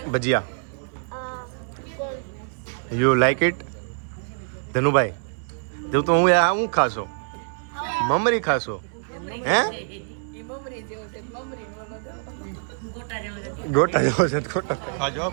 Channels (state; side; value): silent; left; 62 dB below the other